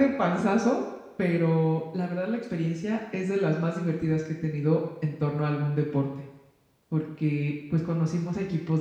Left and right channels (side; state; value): both; identical; correlation 1.00